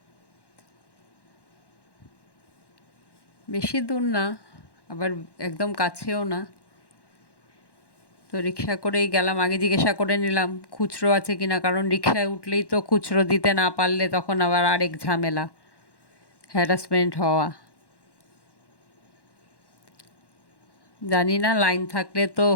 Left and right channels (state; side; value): late; right; 1.1 ms